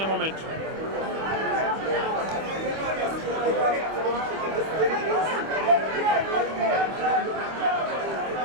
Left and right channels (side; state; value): left; late; 25 ms